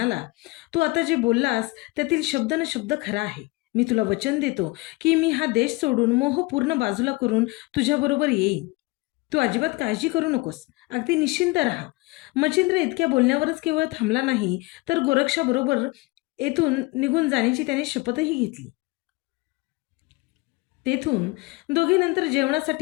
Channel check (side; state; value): right; quieter; 24.0 dB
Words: तू आता जे बोललास त्यातील शब्द न शब्द खरा आहे. मी तुला वचन देतो की मी हा देश सोडून मोह पूर्ण बाजूला करून तुझ्याबरोबर येईन. तू अजिबात काळजी करू नकोस. अगदी निश्चिंत राहा. मच्छिंद्र इतक्या बोलण्यावरच केवळ थांबला नाही तर गोरक्षाबरोबर येथून निघून जाण्याची त्याने शपथही घेतली. तेथून दोघे नंतर